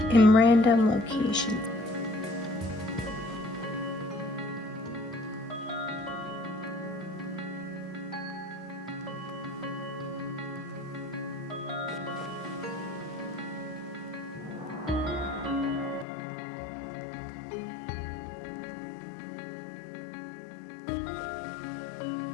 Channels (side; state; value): right; drops out; at 16.1 s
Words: in random locations.